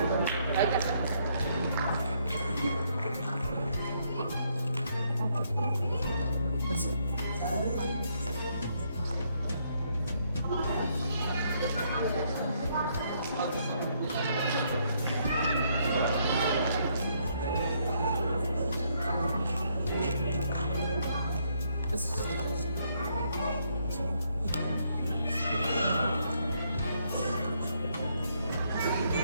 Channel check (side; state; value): both; inverted; correlation -0.72